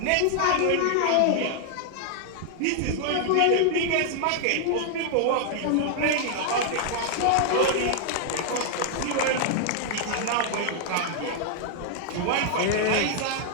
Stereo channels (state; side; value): different; both; correlation 0.00